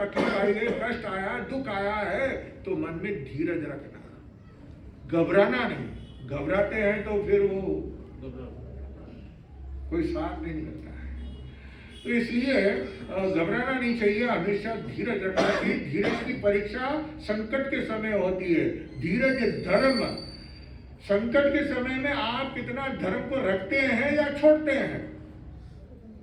आई है, कष्ट आया, दुख आया है, तो मन में धीरज रखना, घबराना नहीं। घबराते हैं तो फिर वो कोई साथ नहीं निकलता है। तो इसलिए घबराना नहीं चाहिए, हमेशा धीरज रखना चाहिए। धीरज की परीक्षा संकट के समय होती है। धीरज धर्म, संकट के समय में आप कितना धर्म को रखते हैं या छोड़ते हैं।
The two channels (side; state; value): both; identical; correlation 1.00